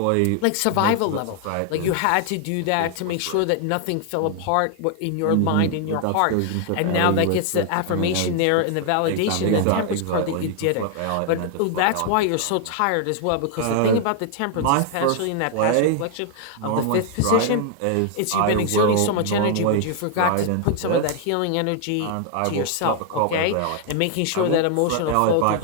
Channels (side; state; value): both; different; correlation 0.00